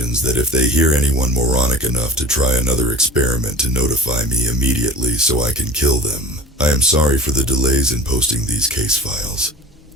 that if they hear anyone moronic enough to try another experiment to notify me immediately so I can kill them. I am sorry for the delays in posting these case files,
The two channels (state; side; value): normal; both; correlation 0.38